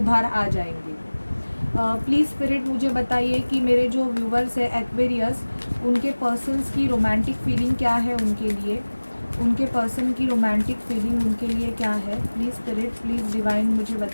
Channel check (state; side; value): inverted; both; correlation -1.00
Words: आ जाएंगे। प्लीज़ स्पिरिट मुझे बताइए कि मेरे जो व्यूवर्स है एक्वेरियस, उनके पर्सन्स की रोमांटिक फीलिंग क्या है उनके लिए, उनके पर्सन की रोमांटिक फीलिंग उनके लिए क्या है। प्लीज़ स्पिरिट, प्लीज़ डिवाइन मुझे